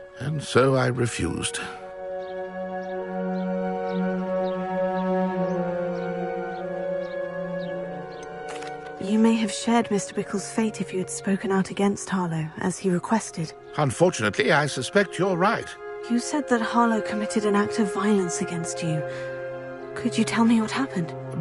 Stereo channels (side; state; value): both; identical; correlation 1.00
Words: and so I refused. You may have shared Mr. Bickle's fate if you had spoken out against Harlow, as he requested. Unfortunately, I suspect you're right. You said that Harlow committed an act of violence against you. Could you tell me what happened?